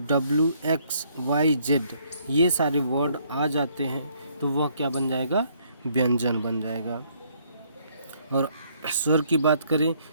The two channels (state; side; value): inverted; both; correlation -0.67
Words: ये सारे वर्ड आ जाते हैं, तो वह क्या बन जाएगा? व्यंजन बन जाएगा। और स्वर की बात करें